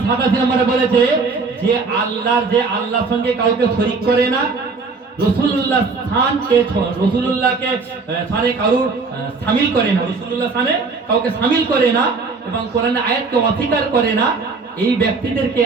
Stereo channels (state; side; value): quieter; left; 4.3 dB